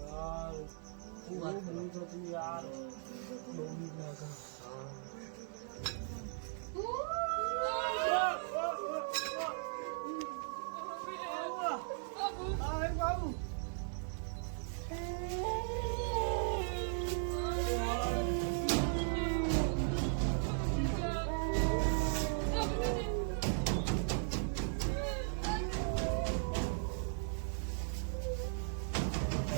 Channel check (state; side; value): silent; left; 53 dB below the other